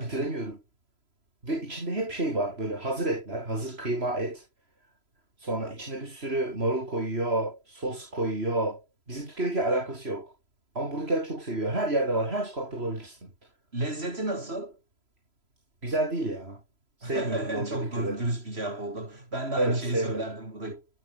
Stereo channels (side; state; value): left; late; 3.0 ms